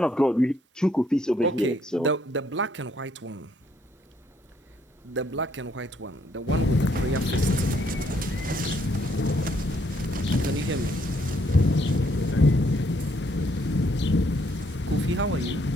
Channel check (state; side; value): normal; both; correlation 0.69